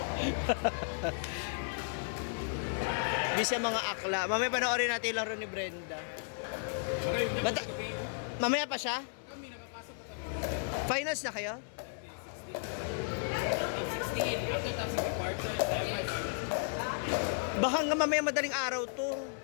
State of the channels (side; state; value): right; silent; 55 dB below the other